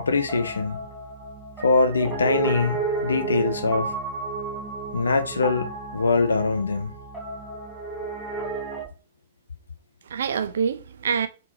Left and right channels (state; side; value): inverted; both; correlation -0.63